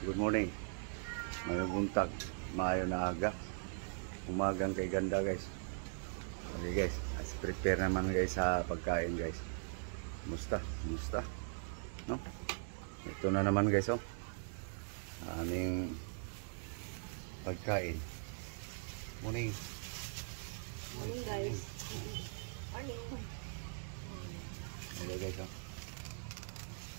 Good morning. Mayong buntag, maayo na aga. Umagang kay ganda guys. Okay guys, as prepare naman guys sa pagkain guys. Musta? No? Ito na naman guys oh. Aming pagkain. Morning. Morning guys. Morning. Hello guys oh.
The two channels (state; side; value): silent; left; digital silence